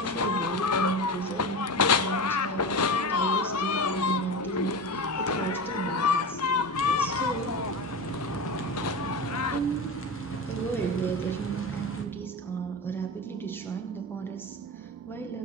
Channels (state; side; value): normal; both; correlation 0.25